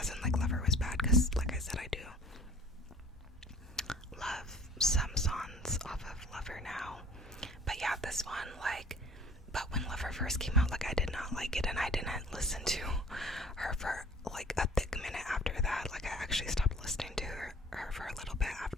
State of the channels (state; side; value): normal; both; correlation 0.50